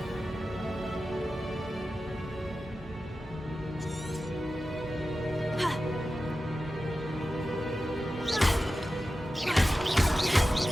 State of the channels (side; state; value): both; normal; correlation 0.93